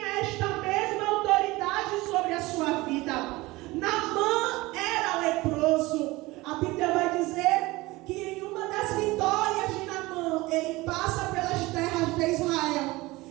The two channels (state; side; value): quieter; left; 20.7 dB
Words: esta mesma autoridade sobre a sua vida. Naamã era leproso. A Bíblia vai dizer que em uma das vitórias de Naamã, ele passa pelas terras de Israel